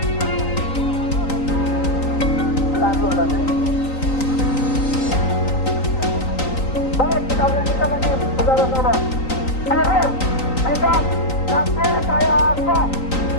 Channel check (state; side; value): late; right; 3.9 ms